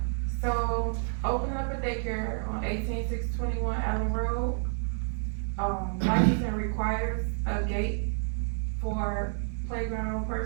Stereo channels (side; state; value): left; silent; digital silence